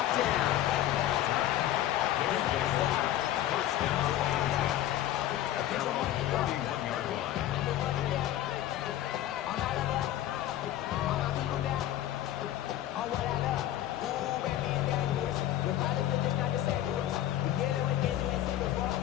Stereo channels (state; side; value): quieter; right; 12.8 dB